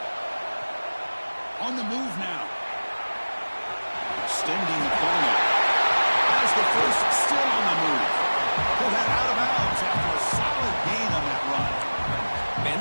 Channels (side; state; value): both; inverted; correlation -1.00